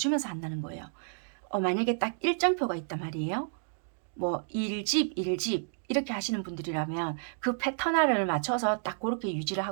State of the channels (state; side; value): silent; left; digital silence